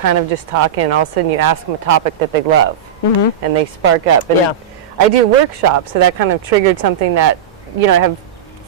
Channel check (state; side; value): quieter; left; 8.1 dB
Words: of just talking, and all of a sudden you ask them a topic that they love, and they spark up. And I do workshops, so that kind of triggered something that, you know, I have